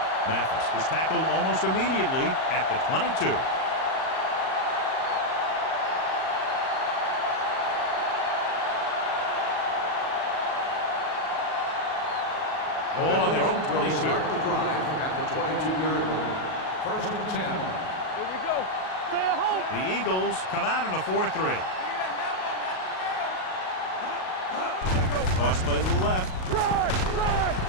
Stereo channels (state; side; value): late; right; 38 ms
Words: Mathis is tackled almost immediately at the 22. Ball on their own 22. Start the drive at the 22-yard line. 1st and 10. Here we go. Stay at home. The Eagles come out in a 4-3. Toss play to the left.